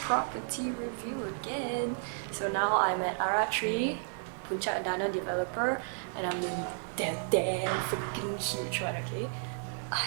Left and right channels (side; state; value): left; silent; 56 dB below the other